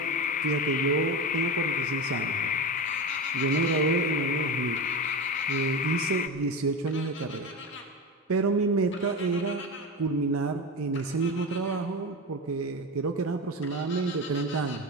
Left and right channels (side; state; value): both; normal; correlation 0.22